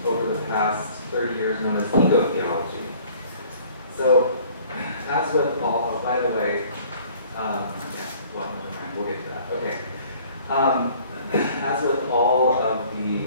over the past 30 years known as eco-theology. So, as with all, oh, by the way, yeah, well, never mind, we'll get to that. Okay. As with all of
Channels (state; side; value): inverted; both; correlation -0.54